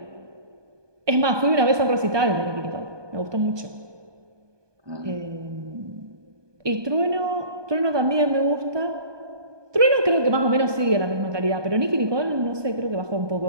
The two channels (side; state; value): left; late; 1.2 ms